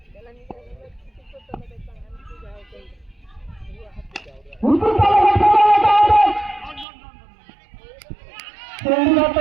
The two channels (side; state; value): left; drops out; at 6.9 s